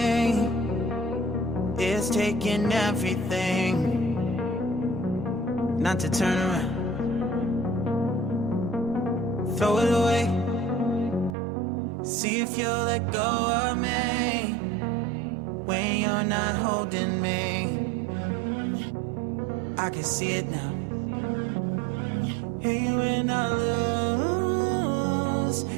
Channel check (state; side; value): drops out; left; at 11.4 s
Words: It's taking everything not to turn around. Throw it away. See if you'll let go of me when you're not holding me. I can see it now. Hey, when I lose,